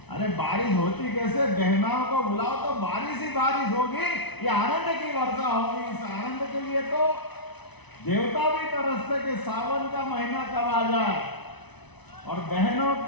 अरे बारिश होती कैसे, बहनों को बुलाओ तो बारिश ही बारिश होगी, ये आनंद की वर्षा होगी। इस आनंद के लिए तो देवता भी तरसते कि सावन का महीना कब आ जाए। और बहनों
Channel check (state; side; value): late; right; 0.99 ms